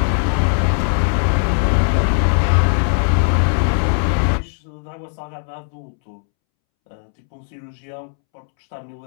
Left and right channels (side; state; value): right; silent; 67 dB below the other